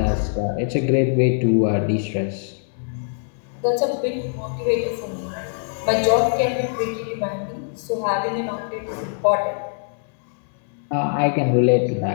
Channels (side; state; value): right; silent; digital silence